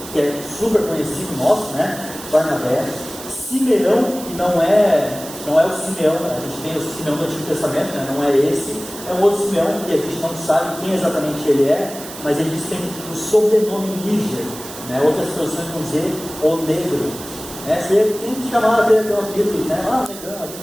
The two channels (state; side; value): noise; right; hiss, 13 dB below the sound